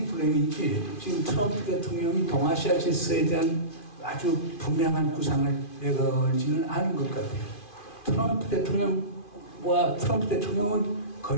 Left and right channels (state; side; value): late; right; 2.5 ms